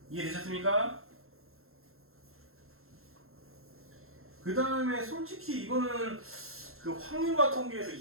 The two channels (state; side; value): late; left; 0.62 ms